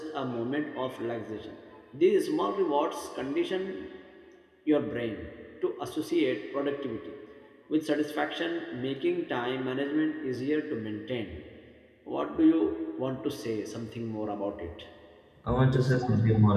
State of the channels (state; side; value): identical; both; correlation 1.00